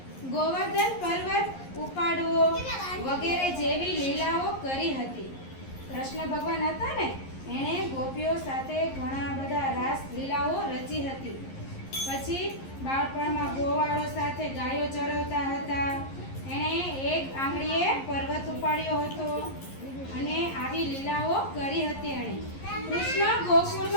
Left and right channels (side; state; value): right; late; 11 ms